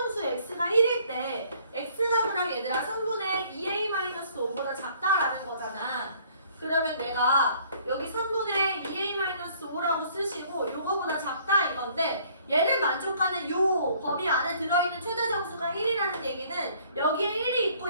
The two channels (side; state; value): both; inverted; correlation -0.59